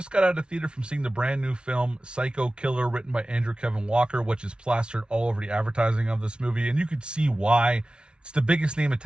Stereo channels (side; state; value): left; late; 0.056 ms